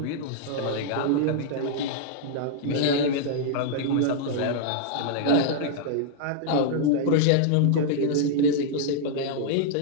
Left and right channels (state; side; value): different; both; correlation -0.01